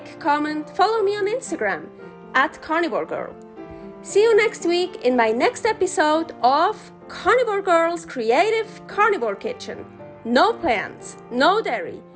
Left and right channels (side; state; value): both; identical; correlation 1.00